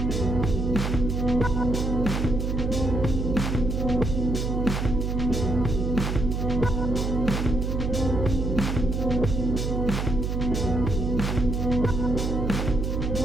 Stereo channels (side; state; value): right; noise; hum, 1 dB below the sound